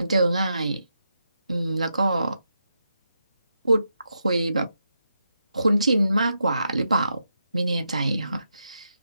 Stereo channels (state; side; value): inverted; both; correlation -0.84